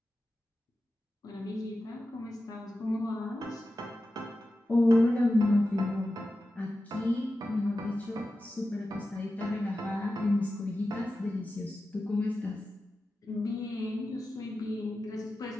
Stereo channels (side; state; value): both; normal; correlation 0.93